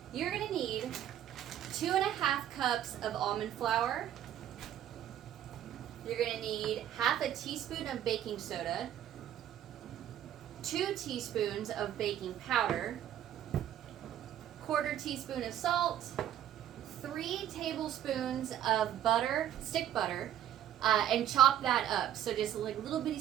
You're going to need 2.5 cups of almond flour. You're going to need half a teaspoon of baking soda, 2 teaspoons of baking powder, 1/4 teaspoon of salt, 3 tablespoons of butter, stick butter, and chop that up. So just like little bitty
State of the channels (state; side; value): quieter; left; 11.1 dB